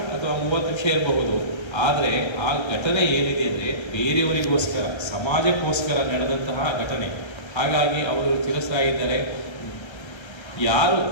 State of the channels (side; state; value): right; late; 1.3 ms